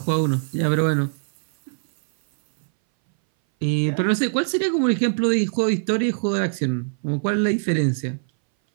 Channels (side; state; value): left; silent; 60 dB below the other